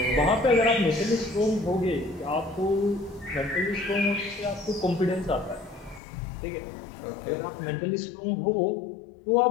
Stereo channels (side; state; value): right; drops out; at 6.0 s